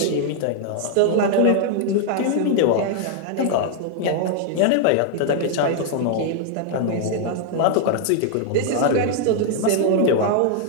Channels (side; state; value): both; different; correlation -0.01